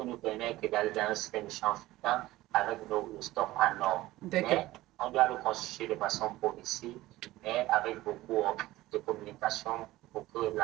nous permettre d'aller dans un système de charge flottant avec nos stocks en or. Mais on doit le constituer de façon progressive, mais avec beaucoup de communication pour que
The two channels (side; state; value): left; quieter; 17.3 dB